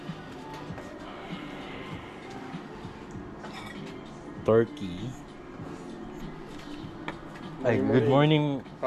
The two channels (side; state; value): both; identical; correlation 1.00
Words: Turkey. Ay, good morning,